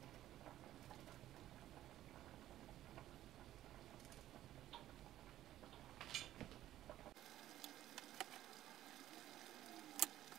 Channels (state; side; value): quieter; left; 13.2 dB